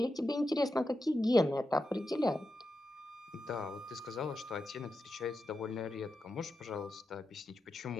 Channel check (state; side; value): normal; both; correlation 0.88